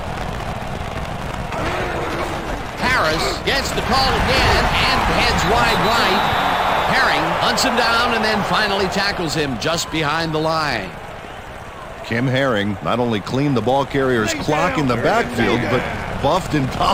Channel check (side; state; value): both; identical; correlation 1.00